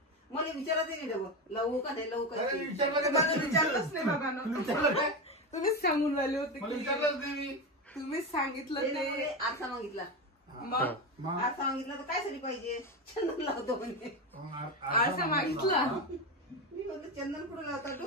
मला विचारत नाही डबल लावू का नाही लावू का. विचारलंच नाही बाबा. तुम्हीच सांगून राहिले होते. तुम्हीच सांगितलं ते. आरसा मागितला. मग आरसा मागितला तर काय साठी पाहिजे? चंदन लावतो म्हणे. आरसा मागितला. मी म्हणतो चंदन कुठं लावतात?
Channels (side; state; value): both; normal; correlation 0.16